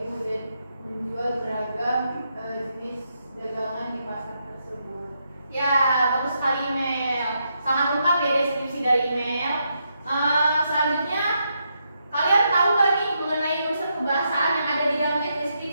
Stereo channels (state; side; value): inverted; both; correlation -0.81